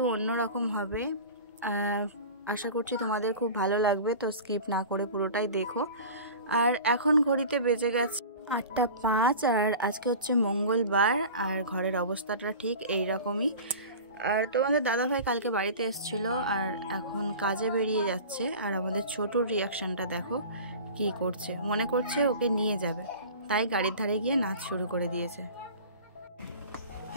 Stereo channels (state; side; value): inverted; both; correlation -0.37